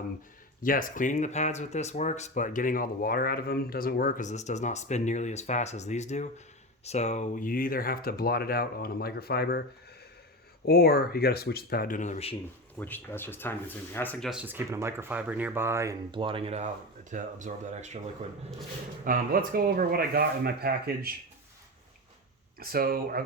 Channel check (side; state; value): both; normal; correlation 0.22